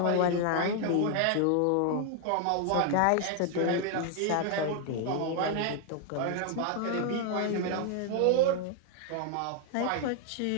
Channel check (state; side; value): different; both; correlation 0.00